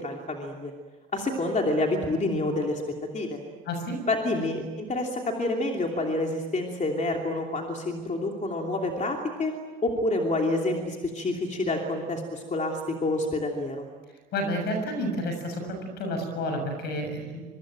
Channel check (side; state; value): both; normal; correlation 0.44